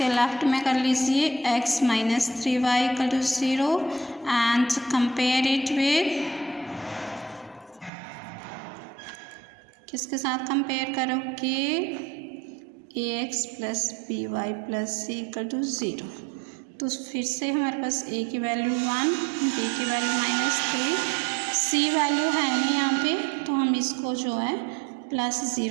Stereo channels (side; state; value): left; drops out; at 7.9 s